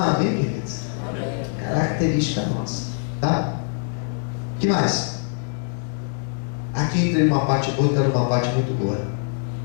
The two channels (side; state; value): right; silent; 63 dB below the other